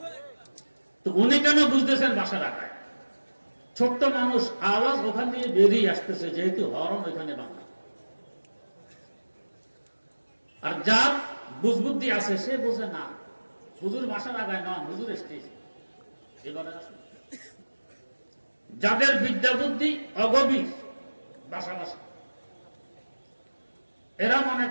তো উনি কেন বুঝতেছেন বাঁশের আগায়? ছোট্ট মানুষ, আওয়াজ ওখান দিয়ে বেরিয়ে আসতেছে, যেহেতু হরন ওইখানে বাঁধা। আর যার বুঝবুদ্ধি আছে সে বোঝে না, হুজুর বাঁশের আগায় নয়, হুজুর স্টেজ। এবারে আসুন, যাদের বিদ্যা বুদ্ধি অগভীর, বাসা বাসা, এরা মনে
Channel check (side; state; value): both; inverted; correlation -1.00